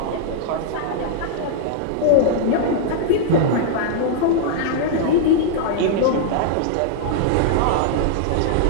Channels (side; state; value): both; different; correlation -0.01